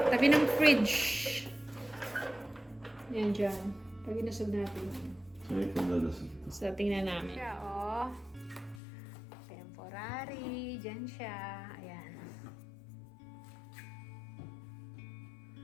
tabi ng fridge. Yan dyan. Pag inusog natin. So, ito dalasag. So, tingnan namin. Siya, oh. Temporary. Dyan siya. Ayan.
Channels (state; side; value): drops out; right; at 8.8 s